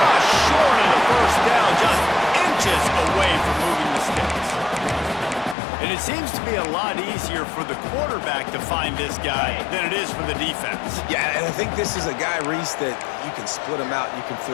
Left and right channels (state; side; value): drops out; right; at 5.6 s